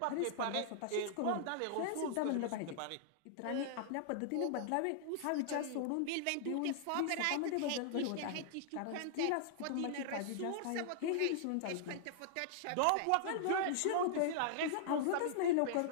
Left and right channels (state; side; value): different; both; correlation -0.01